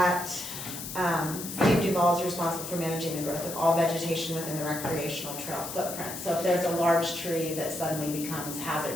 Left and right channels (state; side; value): noise; left; hiss, 8 dB below the sound